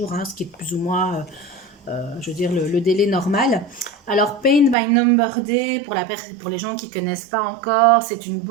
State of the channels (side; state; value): left; drops out; at 4.8 s